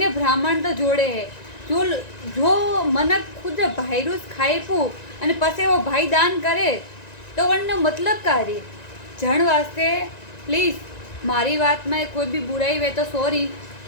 ब्राह्मण तो जोड़े है। जो मनक खुद भाईरूस खाई पू अने पसे वो भाई दान करे तो वनने मतलब कार्य जण वास्ते प्लीज मारी बात में कोई भी बुराई वे तो सॉरी,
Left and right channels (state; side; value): late; right; 1.9 ms